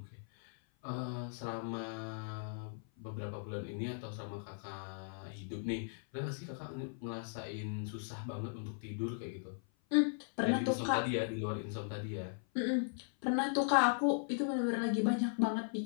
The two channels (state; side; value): silent; right; 52 dB below the other